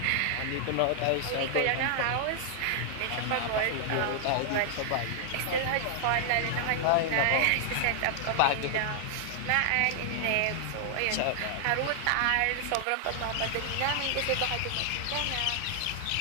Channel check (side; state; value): both; different; correlation 0.00